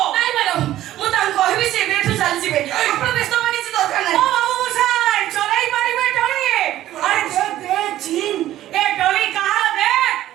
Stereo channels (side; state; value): left; quieter; 13.7 dB